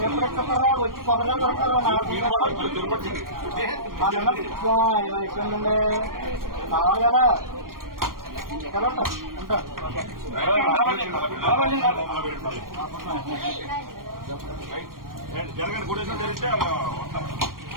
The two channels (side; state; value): left; late; 0.91 ms